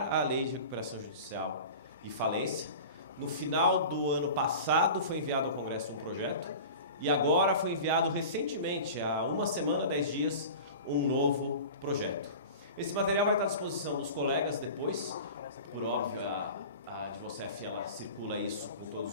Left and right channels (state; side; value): inverted; both; correlation -0.36